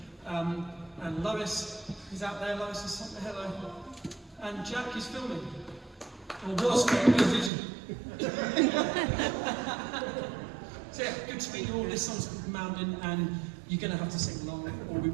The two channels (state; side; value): drops out; left; at 7.5 s